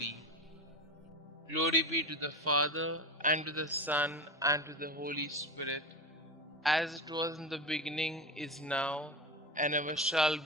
Glory be to the Father, and to the Son, and to the Holy Spirit, as it was in the beginning, is now, and ever shall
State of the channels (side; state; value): both; normal; correlation 0.23